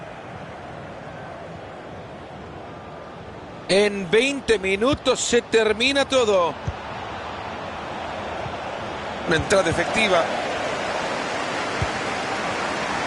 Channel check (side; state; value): both; identical; correlation 1.00